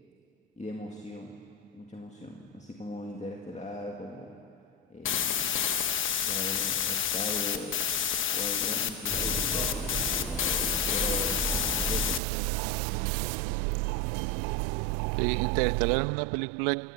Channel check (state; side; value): drops out; left; at 12.2 s